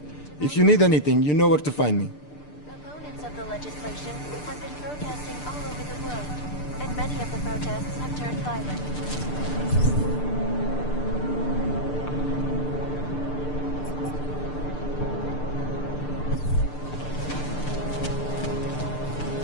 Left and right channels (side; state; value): right; late; 6.8 ms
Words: if you need anything, you know where to find me. Opponents of the legislation have been protesting all over the world, and many of the protests have turned violent.